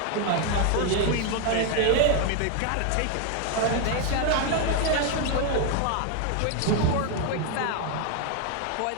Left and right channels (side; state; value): both; different; correlation 0.01